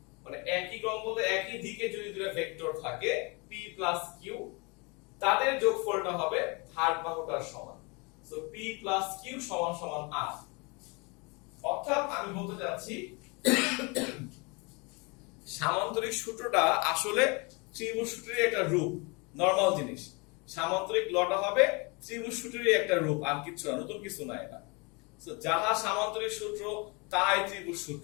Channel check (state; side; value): quieter; right; 29.7 dB